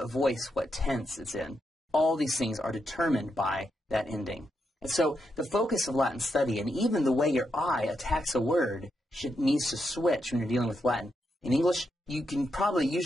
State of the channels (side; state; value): both; normal; correlation 0.83